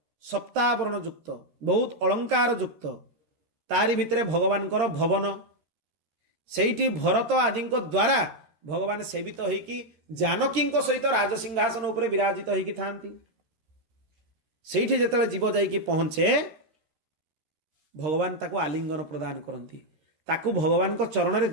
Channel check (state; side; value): late; left; 13 ms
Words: ସପ୍ତାବରଣ ଯୁକ୍ତ, ବହୁତ ଅଳଙ୍କାର ଯୁକ୍ତ, ତାରି ଭିତରେ ଭଗବାନଙ୍କର ଭବନ। ସେଇଠି ଭରତ ଆଦିଙ୍କ ଦ୍ୱାରା ଭଗବାନ ସେବିତ ହେଇକି ଜାନକୀଙ୍କ ସହିତ ରାଜସିଂହାସନ ଉପରେ ବିରାଜିତ ହେଇକି ଥାନ୍ତି। ସେଇଠି ଯେତେବେଳେ ଜୀବ ଯାଇକି ପହଞ୍ଚେ ଭଗବାନ ତାକୁ ଆଲିଙ୍ଗନ ପ୍ରଦାନ କରନ୍ତି। ତାକୁ ଭଗବାନଙ୍କ ଚରଣରେ